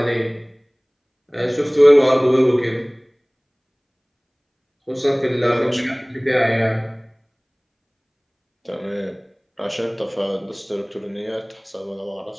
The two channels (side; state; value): both; identical; correlation 1.00